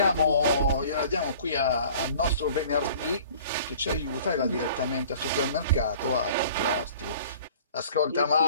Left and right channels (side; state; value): both; inverted; correlation -0.48